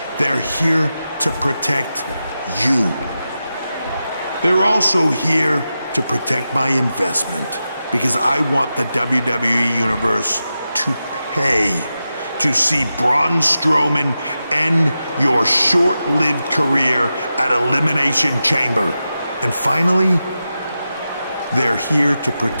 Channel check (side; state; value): both; inverted; correlation -0.91